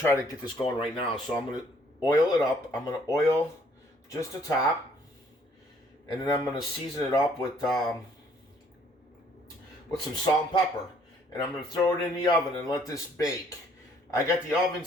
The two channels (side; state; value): both; normal; correlation 0.62